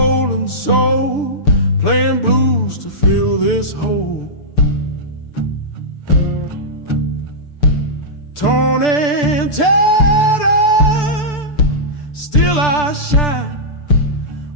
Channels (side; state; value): right; late; 6.8 ms